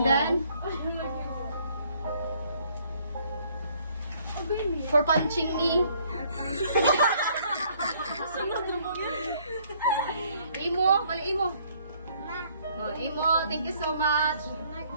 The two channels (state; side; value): inverted; both; correlation -0.63